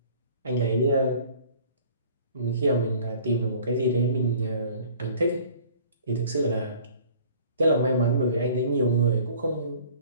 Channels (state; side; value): inverted; both; correlation -0.50